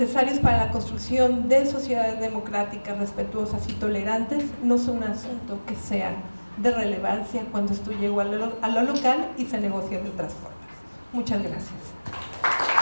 para la construcción de sociedades democráticas, respetuosas y tolerantes, no son un asunto que sea de relevancia cuando esto llegó a lo local y se negocia de otras formas. Muchas gracias.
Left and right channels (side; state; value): both; inverted; correlation -1.00